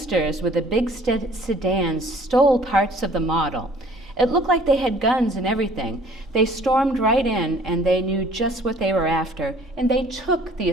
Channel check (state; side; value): normal; both; correlation 0.54